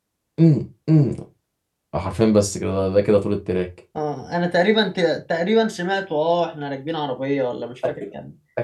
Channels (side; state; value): both; identical; correlation 1.00